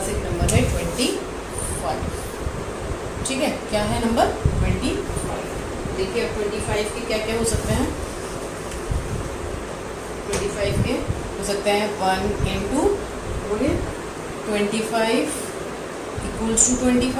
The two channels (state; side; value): identical; both; correlation 1.00